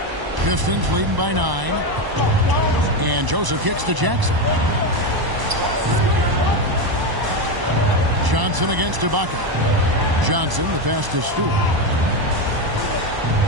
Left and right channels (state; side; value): late; left; 1.0 ms